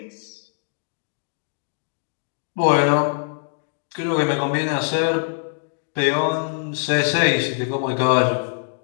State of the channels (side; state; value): right; silent; digital silence